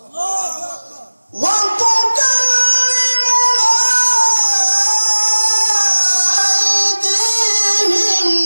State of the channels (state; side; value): inverted; both; correlation -1.00